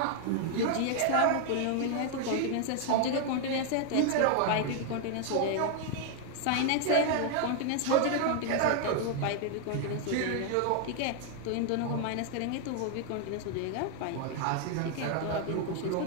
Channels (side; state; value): both; different; correlation 0.00